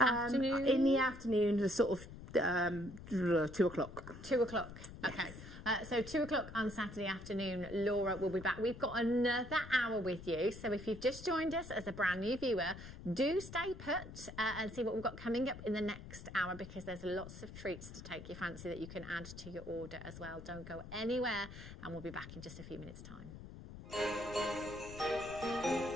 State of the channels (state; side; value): noise; left; rumble, 13 dB below the sound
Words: In the afternoon, the sort of 2 o'clock. 2 o'clock. Okay. So 2 o'clock on Saturday afternoon, Laura will be back. We've got another hour with you. So if you've just joined us as a brand new viewer, do stay put and see what we've got coming up in the next hour, because there's lots of treats to take your fancy that you can add to your order as well. Don't go anywhere, and we'll be back in just a few minutes' time.